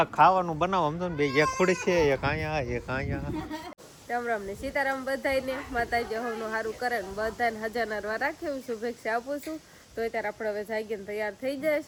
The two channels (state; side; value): identical; both; correlation 1.00